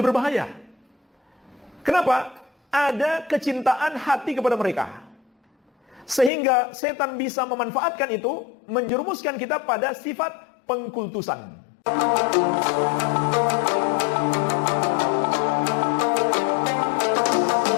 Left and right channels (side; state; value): right; drops out; at 6.3 s